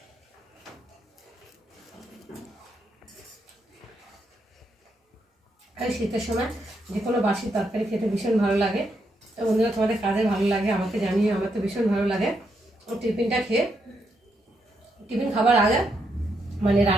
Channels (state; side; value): normal; both; correlation 0.79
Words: আর শীতের সময় যে কোনো বাসি তরকারি খেতে ভীষণ ভালো লাগে। তো বন্ধুরা, তোমাদের কাদের ভালো লাগে আমাকে জানিয়ে। আমার তো ভীষণ ভালো লাগে। টিফিনটা খেয়ে টিফিন খাবার আগে মানে